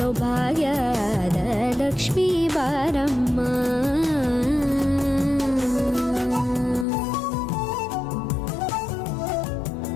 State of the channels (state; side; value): drops out; right; at 6.9 s